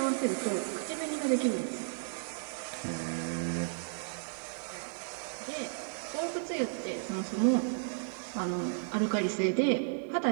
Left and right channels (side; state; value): left; silent; 55 dB below the other